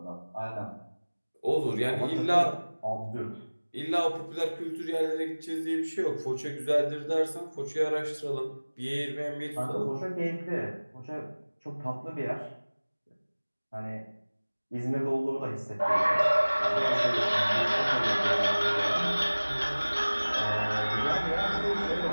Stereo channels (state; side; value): inverted; both; correlation -1.00